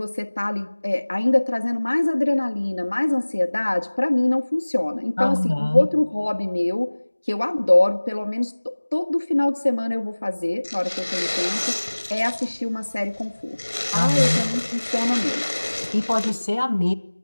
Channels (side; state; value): both; inverted; correlation -1.00